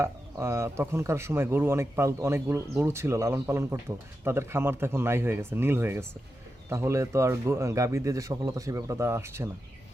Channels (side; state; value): both; normal; correlation 0.89